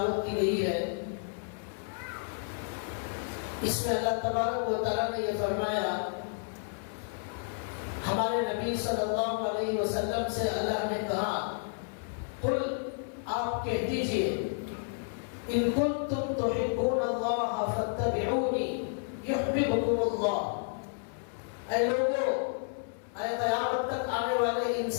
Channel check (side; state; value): right; silent; digital silence